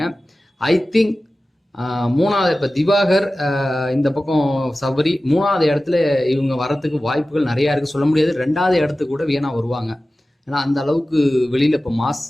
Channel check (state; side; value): normal; both; correlation 0.96